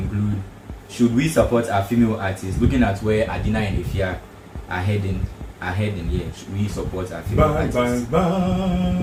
should we support our female artists? Looking at where Adina and Efya are heading, should we support our female artists?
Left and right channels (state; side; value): identical; both; correlation 1.00